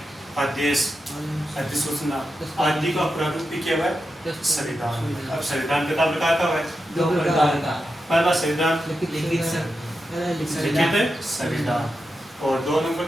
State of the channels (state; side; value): normal; both; correlation 0.89